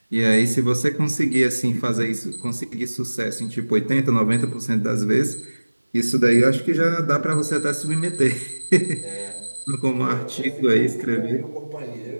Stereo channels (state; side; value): inverted; both; correlation -1.00